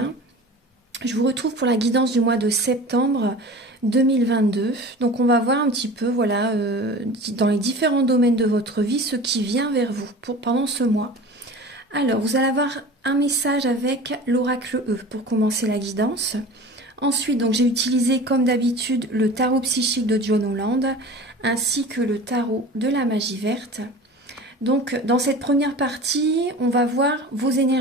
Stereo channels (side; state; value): both; normal; correlation 0.37